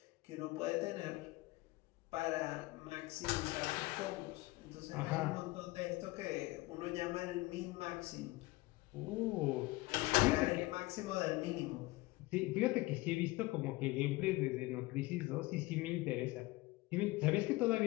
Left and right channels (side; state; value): right; quieter; 21.1 dB